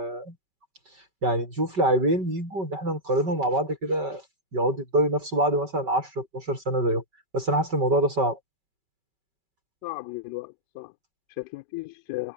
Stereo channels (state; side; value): late; left; 5.2 ms